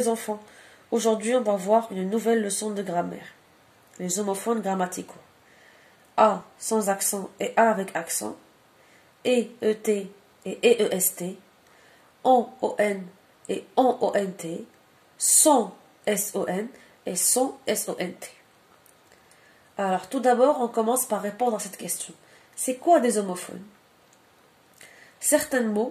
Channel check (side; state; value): both; identical; correlation 1.00